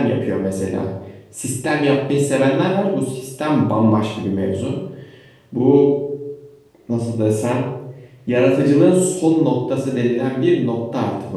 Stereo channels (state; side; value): identical; both; correlation 1.00